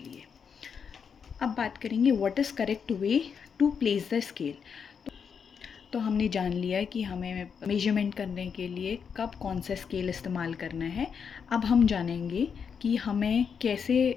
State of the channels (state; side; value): quieter; right; 6.6 dB